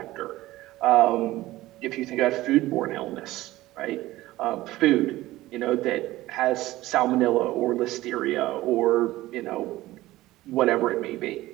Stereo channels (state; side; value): quieter; left; 17.0 dB